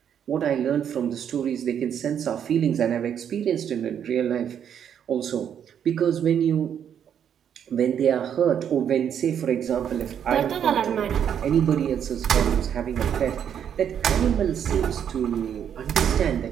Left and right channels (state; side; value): quieter; left; 8.8 dB